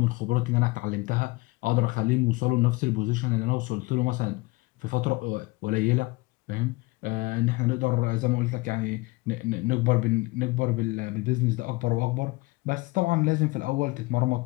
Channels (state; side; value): quieter; right; 23.3 dB